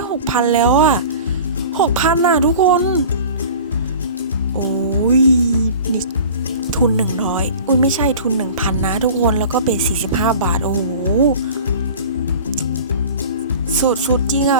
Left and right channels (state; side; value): inverted; both; correlation -0.41